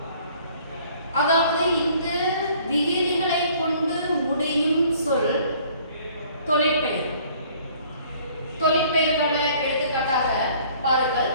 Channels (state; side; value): inverted; both; correlation -0.56